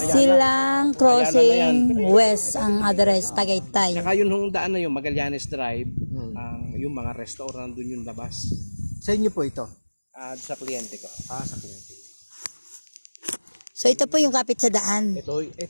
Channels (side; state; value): both; inverted; correlation -1.00